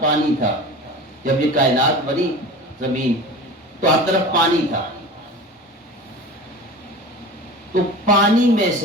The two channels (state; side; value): normal; both; correlation 0.34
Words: پانی تھا، جب یہ کائنات بنی زمین تو ہر طرف پانی تھا، تو پانی میں